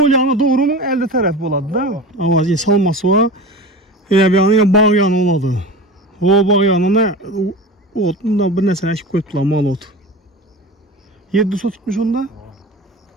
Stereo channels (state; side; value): normal; both; correlation 0.31